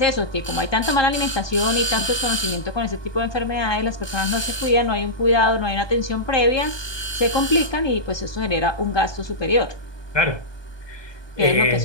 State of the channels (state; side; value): late; right; 1.2 ms